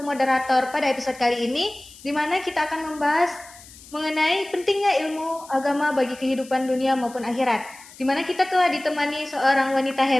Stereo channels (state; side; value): noise; left; hiss, 20 dB below the sound